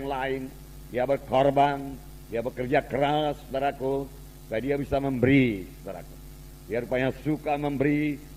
lain. Dia berkorban, dia bekerja keras, saudaraku, supaya dia bisa memberi, saudaraku. Dia rupanya suka memberi,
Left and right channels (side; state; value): both; identical; correlation 1.00